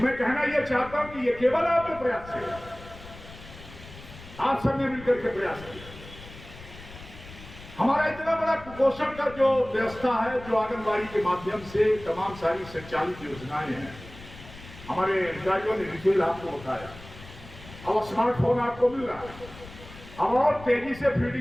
कहना यह चाहता हूं कि ये केवल आपके प्रयास से, आप सबने मिलकर के प्रयास किया। हमारा इतना बड़ा कुपोषण का जो व्यवस्था है, जो आंगनबाड़ी के माध्यम से तमाम सारी संचालित योजनाएं हैं, हमारे अधिकारियों ने डिटेल आपको बताया। अब स्मार्टफोन आपको मिल रहा है, अब और तेजी से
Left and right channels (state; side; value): noise; left; rumble, 17 dB below the sound